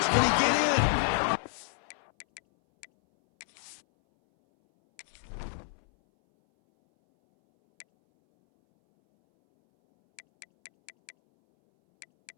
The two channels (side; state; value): right; silent; 58 dB below the other